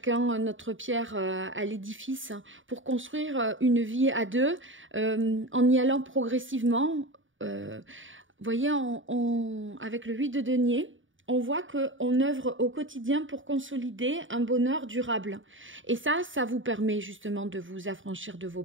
notre pierre à l'édifice pour construire une vie à deux en y allant progressivement. Vous voyez, avec le 8 de denier, on voit qu'on œuvre au quotidien pour consolider un bonheur durable. Et ça vous permet justement de vous affranchir de vos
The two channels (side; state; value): left; late; 0.57 ms